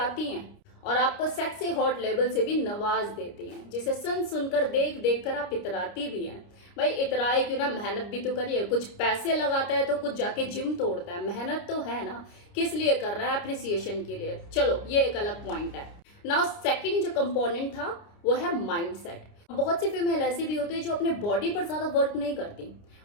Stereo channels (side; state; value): right; late; 29 ms